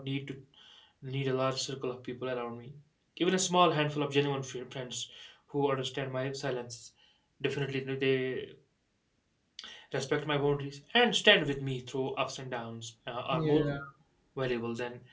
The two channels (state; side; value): identical; both; correlation 1.00